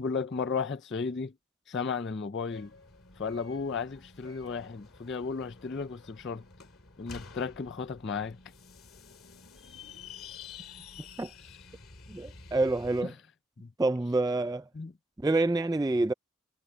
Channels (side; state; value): both; normal; correlation 0.61